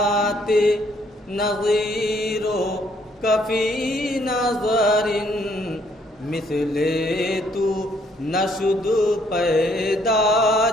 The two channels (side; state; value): both; normal; correlation 0.67